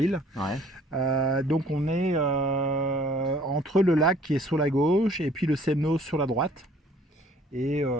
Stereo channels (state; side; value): normal; both; correlation 0.56